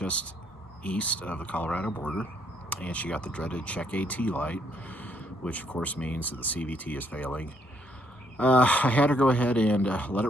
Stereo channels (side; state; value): both; normal; correlation 0.71